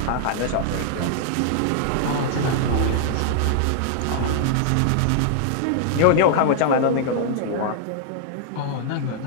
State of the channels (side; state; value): both; different; correlation -0.01